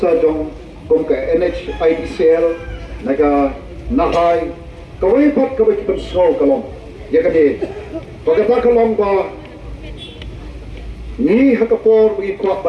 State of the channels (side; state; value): both; identical; correlation 1.00